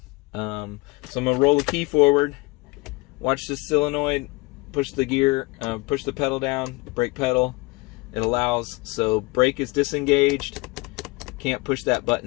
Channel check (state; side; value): quieter; right; 24.7 dB